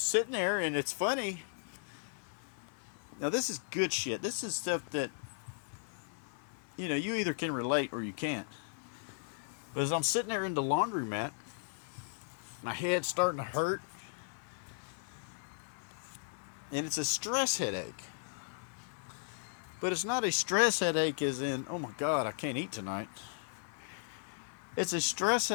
there, and it's funny. Now, this is good shit. This is stuff that, you either can relate or you can't. But as I'm sitting there in the laundromat, my head's starting to hurt. And it's a stress headache. But it's not a stress headache as in, oh my God, I can't eat tonight. It's a stress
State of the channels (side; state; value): right; silent; 54 dB below the other